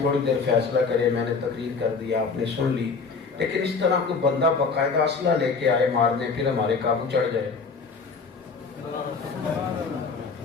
تھوڑی دیر فیصلہ کرے. میں نے تقریر کر دیا، آپ نے سن لی، لیکن اس طرح کوئی بندہ باقاعدہ اسلحہ لے کے آئے مارنے، پھر ہمارے قابو چڑھ جائے.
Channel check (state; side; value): quieter; right; 4.8 dB